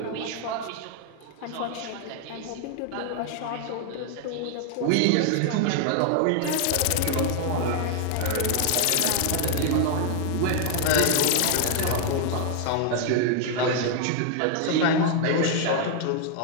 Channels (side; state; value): both; different; correlation 0.00